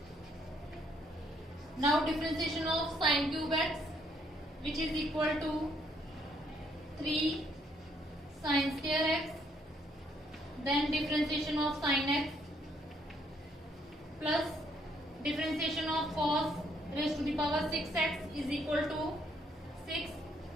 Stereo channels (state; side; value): normal; both; correlation 0.69